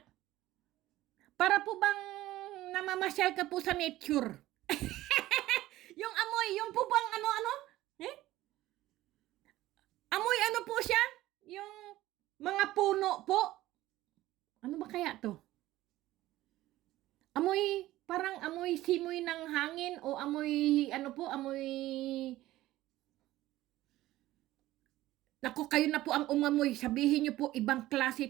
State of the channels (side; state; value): left; quieter; 15.9 dB